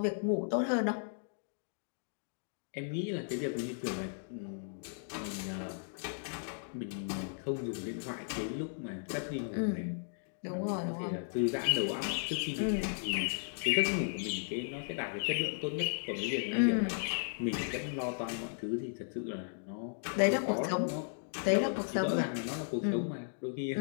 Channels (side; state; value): right; silent; digital silence